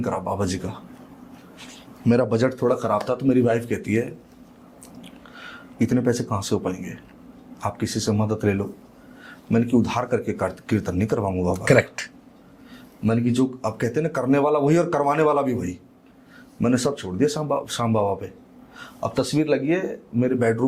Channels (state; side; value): identical; both; correlation 1.00